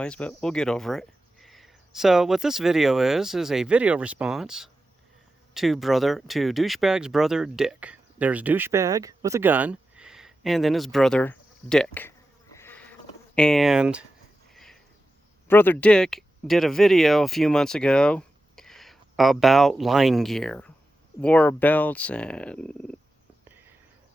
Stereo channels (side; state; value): both; normal; correlation 0.92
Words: but we'll get over it. So what this video is a video response to Douchebag's brother Dick. There's Douchebag with a gun, and then his brother Dick. And Brother Dick did a video a few months ago about line gear, war belts, and